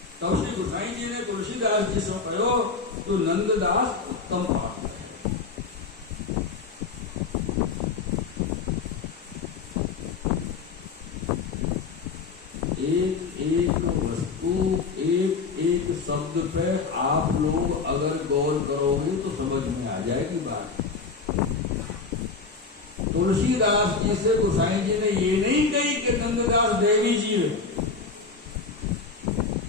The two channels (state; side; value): quieter; right; 4.6 dB